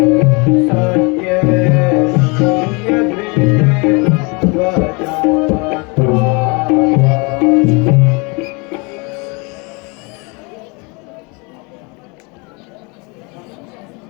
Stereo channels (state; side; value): quieter; right; 30.1 dB